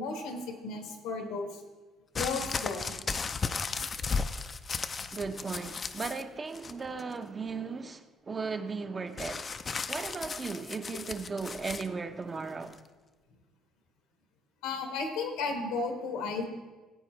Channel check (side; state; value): both; normal; correlation 0.71